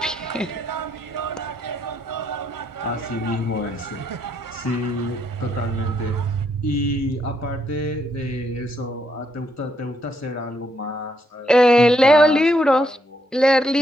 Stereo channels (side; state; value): both; normal; correlation 0.75